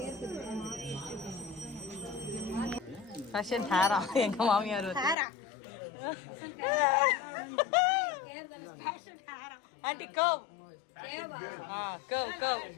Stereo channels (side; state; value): right; drops out; at 5.2 s